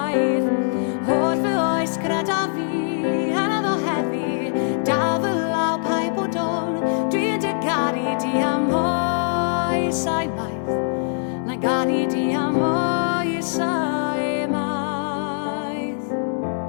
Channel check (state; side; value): silent; right; digital silence